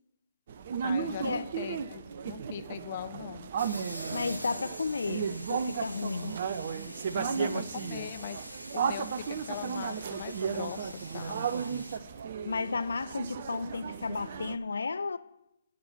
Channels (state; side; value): inverted; both; correlation -0.73